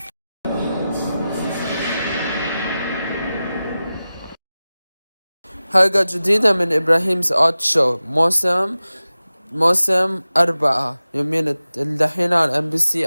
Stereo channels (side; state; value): both; inverted; correlation -0.95